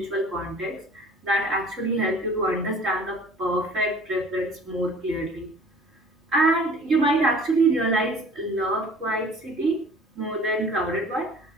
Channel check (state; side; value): normal; both; correlation 0.48